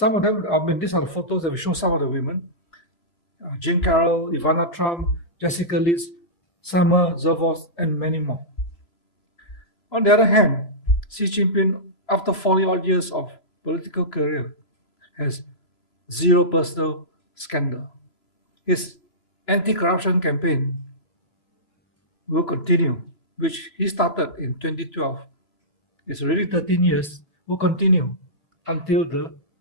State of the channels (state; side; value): late; right; 3.0 ms